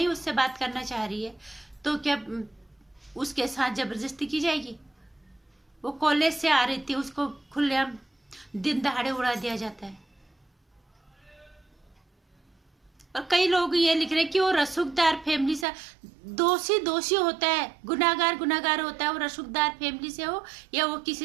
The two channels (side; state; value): left; drops out; at 15.7 s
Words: उससे बात करना चाह रही है, तो क्या उसके साथ जबरदस्ती की जाएगी? वो कॉलेज से आ रही थी, उसको खुलेआम दिन दहाड़े उड़ा दिया जाता है। और कई लोग ये लिख रहे हैं कि वो रसूखदार फैमिली से, दोषी होता है, गुनाहगार होता है, वो रसूखदार फैमिली से हो या वो